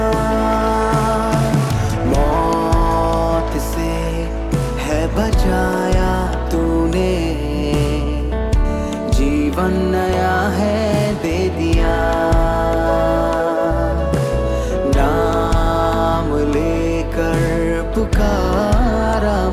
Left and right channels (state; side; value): identical; both; correlation 1.00